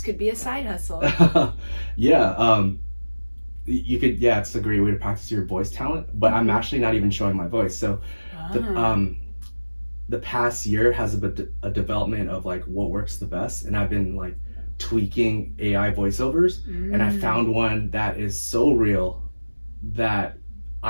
could be a side hustle. Yeah. You could, yeah, it's a great way to practice your voice talent, but I'm actually not even showing my voice. So the past year has a development of like what works the best, and I've been like tweaking AI voiceovers, and I found one that is so real that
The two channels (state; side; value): inverted; both; correlation -1.00